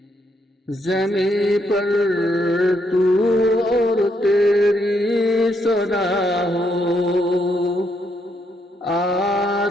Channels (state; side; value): normal; both; correlation 0.76